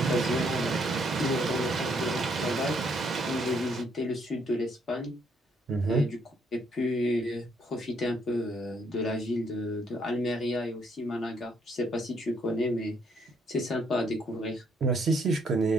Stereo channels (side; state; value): both; normal; correlation 0.70